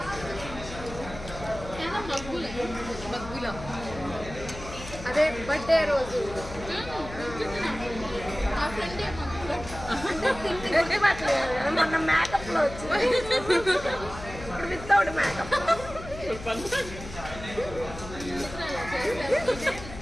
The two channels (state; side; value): noise; left; hum, 13 dB below the sound